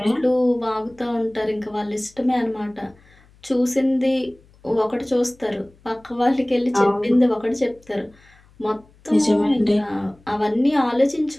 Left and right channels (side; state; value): left; noise; hum, 29 dB below the sound